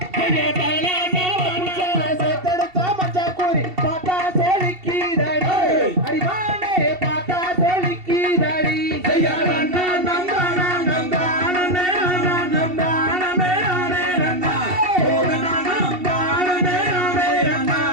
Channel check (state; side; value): late; left; 2.7 ms